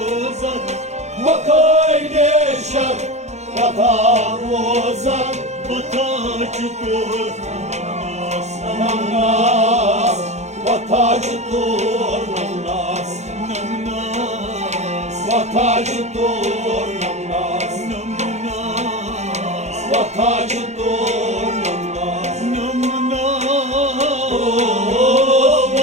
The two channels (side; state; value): left; late; 0.33 ms